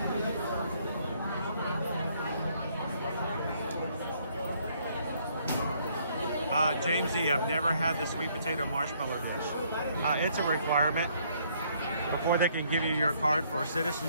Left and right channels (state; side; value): inverted; both; correlation -0.67